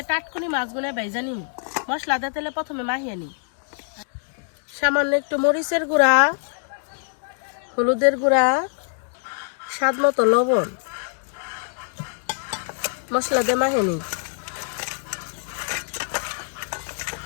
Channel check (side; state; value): right; silent; digital silence